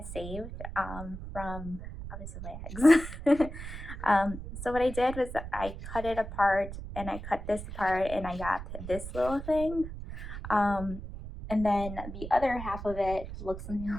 saved from obviously my eggs. So what I did was I cut it apart, and I cut this apart, and I got this little thing. And then the other half of it looks something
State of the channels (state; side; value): noise; right; rumble, 9 dB below the sound